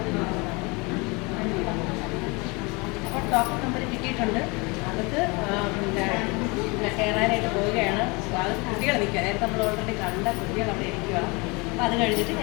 ഡോക്ടർ നമ്പർ കിട്ടിയിട്ടുണ്ട്. അകത്ത് കയറാനായിട്ട് പോവുകയാണ്. അത് കുട്ടികൾ നിൽക്കുക. നേരത്തെ നമ്മൾ ഓൾറെഡി കണ്ട കുട്ടികൾ അവിടെ ഇരിക്കുക. അപ്പോൾ അത് കഴിഞ്ഞിട്ട്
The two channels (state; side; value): quieter; right; 27.7 dB